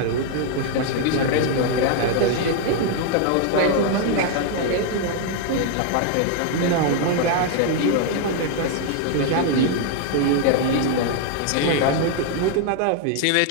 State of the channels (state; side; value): different; both; correlation 0.00